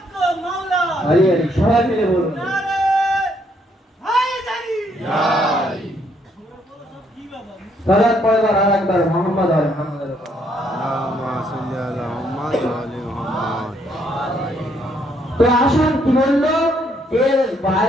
मौला আরে আরে সবাই মিলে বলুন, नारे हैदरी সালাত পড়বার আর একবার মুহাম্মদ আর মুহাম্মাদের উপর। اللهم صل على محمد وعلى محمد তো আসুন কি বললো, এর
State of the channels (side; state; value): both; normal; correlation 0.70